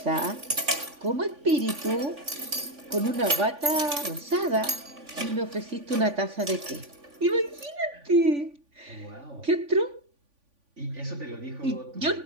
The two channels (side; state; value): left; late; 3.5 ms